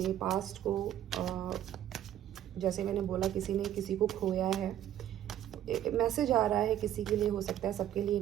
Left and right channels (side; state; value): left; quieter; 11.6 dB